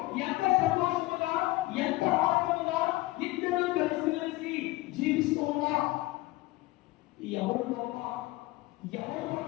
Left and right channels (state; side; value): quieter; right; 19.3 dB